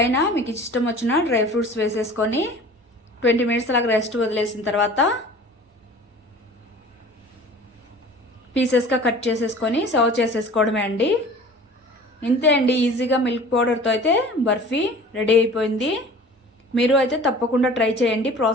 మీకు ఇష్టం వచ్చిన డ్రై ఫ్రూట్స్ వేసేసుకొని 20 మినిట్స్ అలాగ రెస్ట్ వదిలేసిన తర్వాత పీసెస్గా కట్ చేసేసుకొని సర్వ్ చేసేసుకోవడమే అండి. ఇంతే అండి, ఈజీగా మిల్క్ పౌడర్తో అయితే బర్ఫీ రెడీ అయిపోయింది. మీరు అయితే తప్పకుండా ట్రై చేయండి.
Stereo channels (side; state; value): both; normal; correlation 0.44